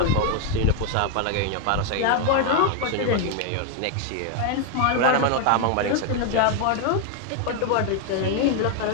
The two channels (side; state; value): both; different; correlation 0.01